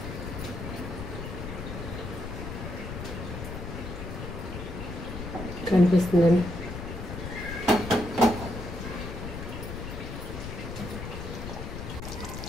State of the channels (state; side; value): noise; left; rumble, 7 dB below the sound